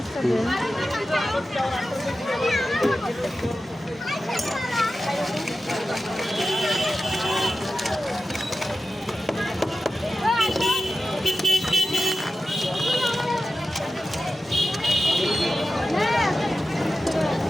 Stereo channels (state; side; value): normal; both; correlation 0.93